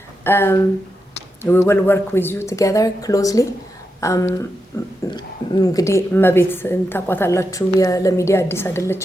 we will work with you together closely. እንግዲህ እመቤት ታቋታላችሁ ለሚዲያ አዲስ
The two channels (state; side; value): normal; both; correlation 0.87